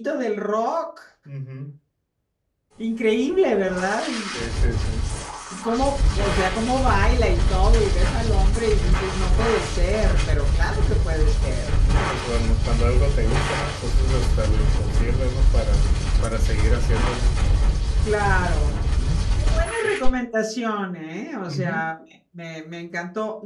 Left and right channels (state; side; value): identical; both; correlation 1.00